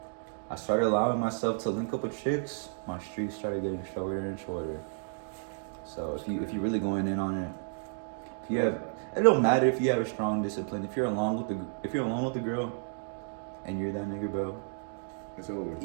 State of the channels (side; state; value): left; silent; digital silence